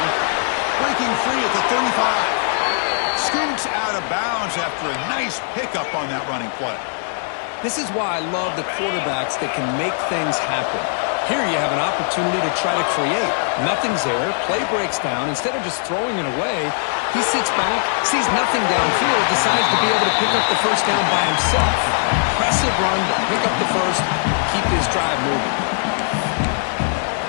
Breaking free at the 35. Scoots out of bounds after a nice pickup on that running play. This is why I love the quarterbacks that can make things happen. Here you have an opportunity to try to create. Nothing's there. Play breaks down. Instead of just throwing it away, he sits back, sees nothing downfield, decides to be able to pick up the first down by himself. Impressive run to pick up the first, keep his drive moving.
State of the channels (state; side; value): silent; right; 66 dB below the other